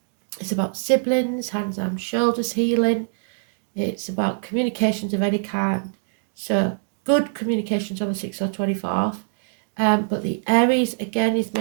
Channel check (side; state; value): left; silent; digital silence